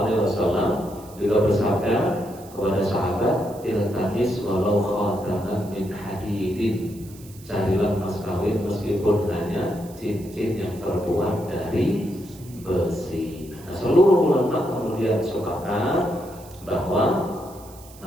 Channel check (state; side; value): noise; right; hiss, 22 dB below the sound